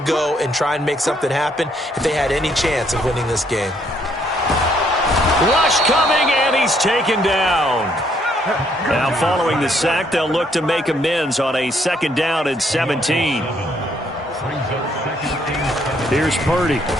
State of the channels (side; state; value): both; normal; correlation 0.69